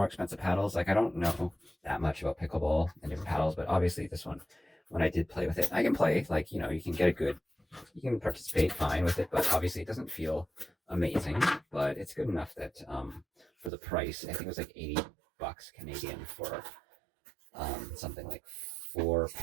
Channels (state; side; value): drops out; left; at 13.7 s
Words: expensive paddles. Like I don't know that much about pickleball and different paddles, but obviously this one, when I did play with it, I can play. Like you can get a good, you can participate fine with it, but obviously it doesn't feel amazing. But it's good enough that for the price, I think it was like 80 bucks Canadian for something like 4